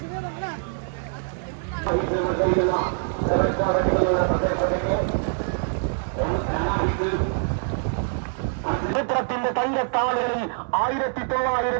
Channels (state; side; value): silent; left; digital silence